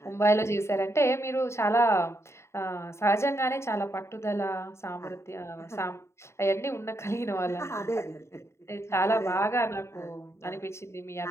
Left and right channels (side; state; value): right; late; 0.13 ms